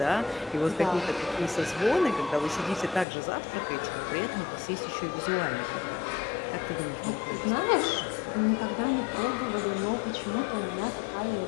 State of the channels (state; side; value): drops out; right; at 3.1 s